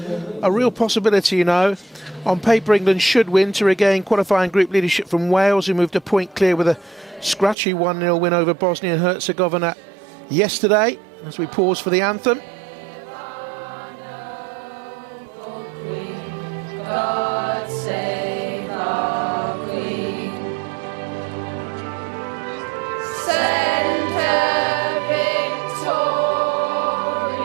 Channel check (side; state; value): left; drops out; at 7.6 s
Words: real possibility, you know. On paper, England should win to regain qualifying group leadership from Wales, who moved a point clear with a scratchy 1-0 win over Bosnia and Herzegovina yesterday. As we pause for the anthem. God save our Queen. Send her victorious,